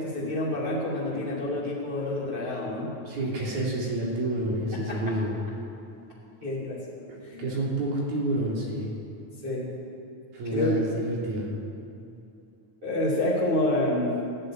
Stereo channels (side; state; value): left; late; 9.3 ms